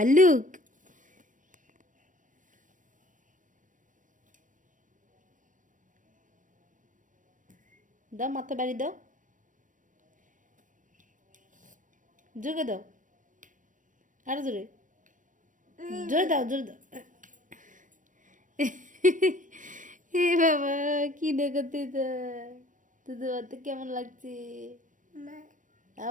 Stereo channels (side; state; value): left; late; 0.38 ms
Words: দাও, মাথা বাড়ি দাও, জোরে দাও, আরো জোরে, জোরে দাও, জোরে দাও। এ বাবা, কি দেখাতে তোদের বাড়িতে কেমন লাগছে?